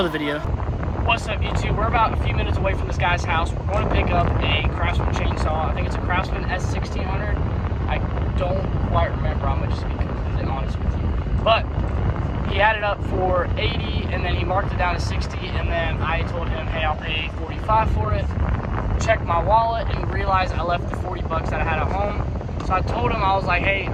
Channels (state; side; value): identical; both; correlation 1.00